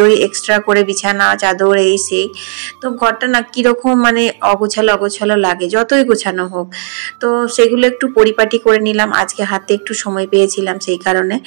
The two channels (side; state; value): left; silent; digital silence